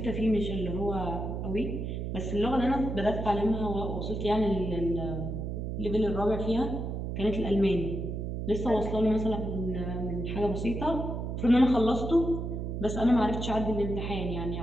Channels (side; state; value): right; noise; hum, 4 dB below the sound